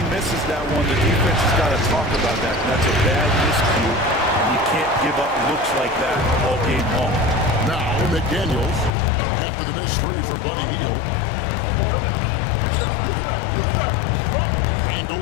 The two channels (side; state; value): right; drops out; at 8.9 s